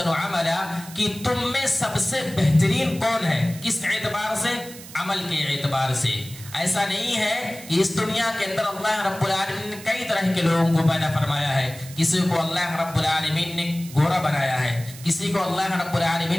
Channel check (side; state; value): right; noise; hiss, 16 dB below the sound